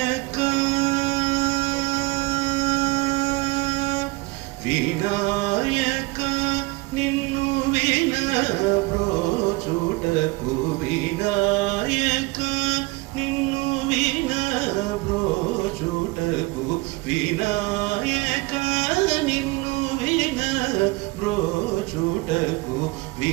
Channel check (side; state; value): left; quieter; 23.3 dB